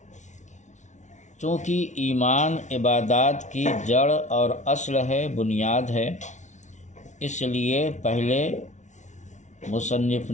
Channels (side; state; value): right; late; 0.35 ms